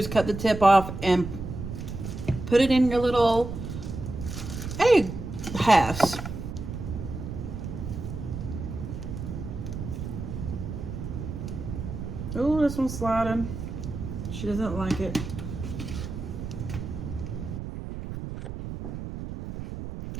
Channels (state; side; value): noise; right; rumble, 7 dB below the sound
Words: cut the tip off and put it in your little egg halves. Oh, this one's sliding. She doesn't like it.